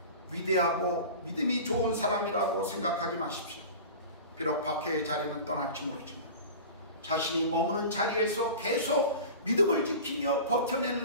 위대하고 믿음이 좋은 사람이라고 생각하지 마십시오. 비록 박해의 자리는 떠날지 모르지만 자신이 머무는 자리에서 계속 믿음을 지키며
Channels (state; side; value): inverted; both; correlation -0.35